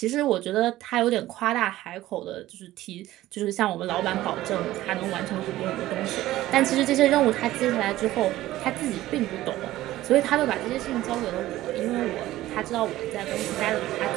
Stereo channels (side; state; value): left; quieter; 15.5 dB